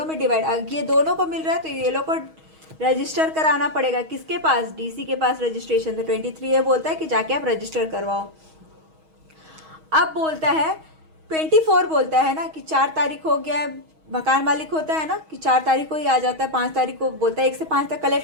में डिवाइड, ये दोनों को मिल रहा है तो ये लोग को रजिस्टर कराना पड़ेगा, किसके पास, डीसी के पास रजिस्ट्रेशन। तो 23 ये बोलता है कि जाके आप रजिस्टर करवाओ। अब बोलता है 24 बोलता है ना कि 4 तारीख हो गया है, मकान मालिक होता है ना कि 4 तारीख को ही आ जाता है, 5 तारीख को बोलता है 1 से 5 तक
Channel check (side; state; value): left; late; 6.3 ms